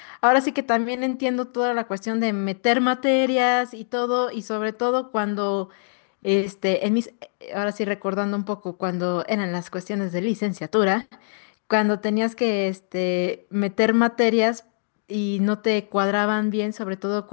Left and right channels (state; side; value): silent; right; digital silence